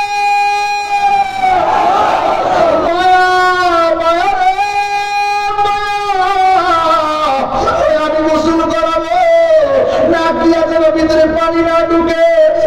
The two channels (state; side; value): identical; both; correlation 1.00